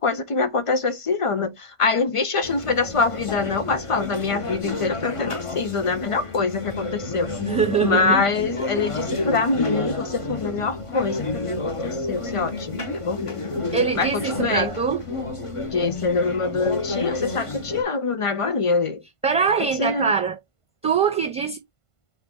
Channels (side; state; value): right; late; 1.5 ms